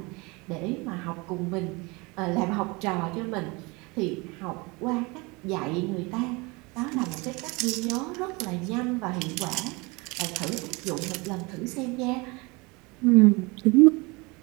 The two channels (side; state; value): left; quieter; 26.2 dB